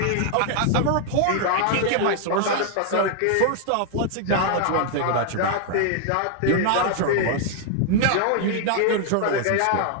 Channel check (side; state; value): both; different; correlation 0.00